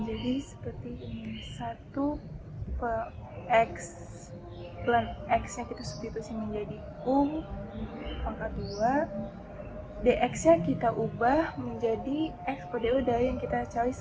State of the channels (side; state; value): both; identical; correlation 1.00